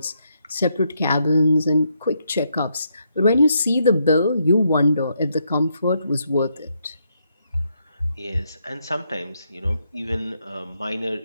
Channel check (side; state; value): both; inverted; correlation -0.77